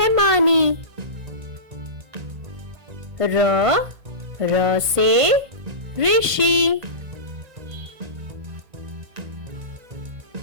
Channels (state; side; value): late; left; 1.5 ms